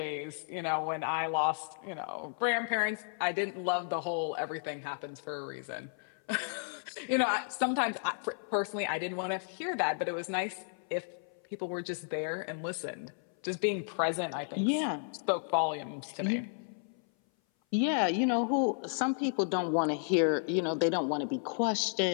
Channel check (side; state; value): right; silent; 56 dB below the other